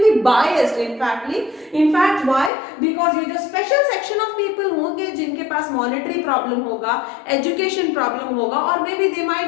be biased. In fact, why? Because ये जो special section of people होंगे जिनके पास monetary problem होगा, education problem होगा, or maybe they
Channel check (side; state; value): right; drops out; at 2.5 s